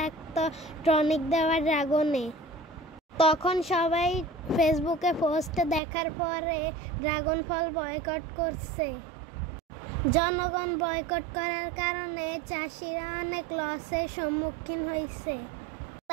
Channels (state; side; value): drops out; left; at 5.8 s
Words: টনিক দেওয়া ড্রাগনে। তখন সবাই ফেসবুকে পোস্ট দেখার পরে ড্রাগন ফল বয়কট করছে। জনগণ বয়কট করার কারণে চাষিরা অনেক লসের সম্মুখীন হয়েছে।